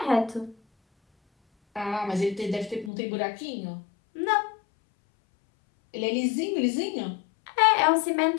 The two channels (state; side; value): drops out; right; at 2.9 s